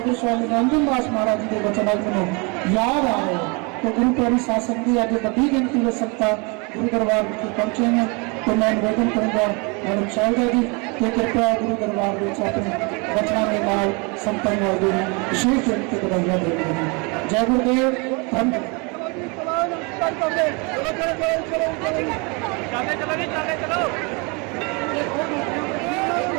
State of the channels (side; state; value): left; quieter; 30.7 dB